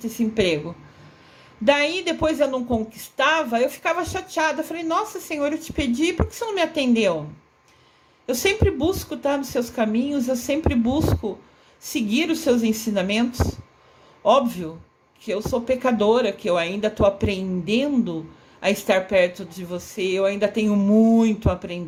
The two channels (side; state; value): both; identical; correlation 1.00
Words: esse emprego. Daí, depois eu não conquistava, eu ficava chateada. Eu falei, nossa, Senhor, eu te pedi, por que você não me atendeu? Eu sempre busco estar nos seus caminhos, eu sempre busco seguir os seus ensinamentos. Óbvio que eu sou pecadora, que eu ainda estou aprendendo a estar perto de você, eu ainda tenho muito a